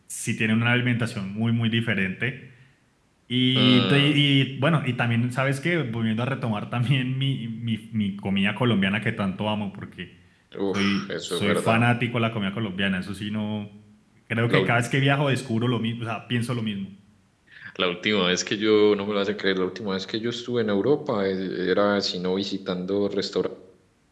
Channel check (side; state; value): both; identical; correlation 1.00